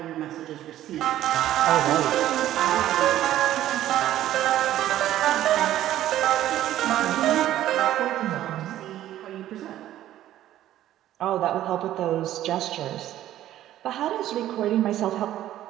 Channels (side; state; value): left; quieter; 13.0 dB